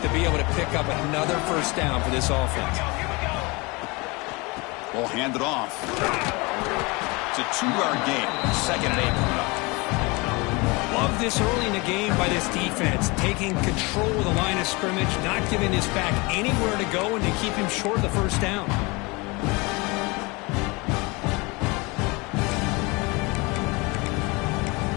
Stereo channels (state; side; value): quieter; right; 26.2 dB